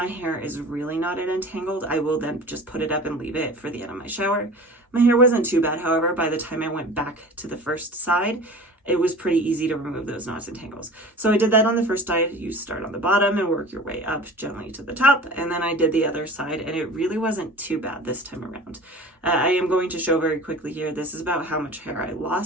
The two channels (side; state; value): both; normal; correlation 0.39